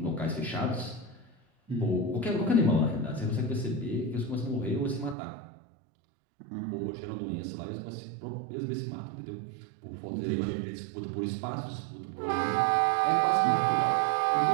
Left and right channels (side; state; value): left; drops out; at 5.2 s